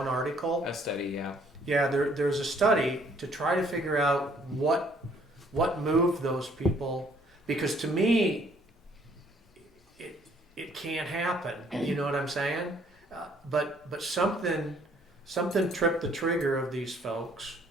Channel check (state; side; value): normal; both; correlation 0.62